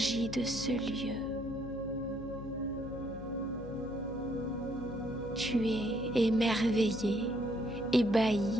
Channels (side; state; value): left; noise; hum, 12 dB below the sound